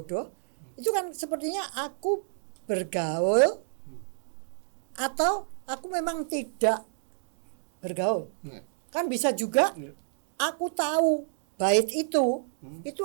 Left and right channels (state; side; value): silent; left; digital silence